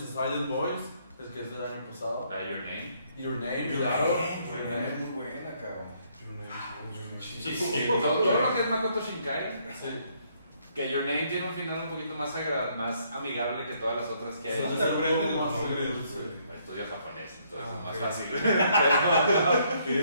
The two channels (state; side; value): inverted; both; correlation -0.69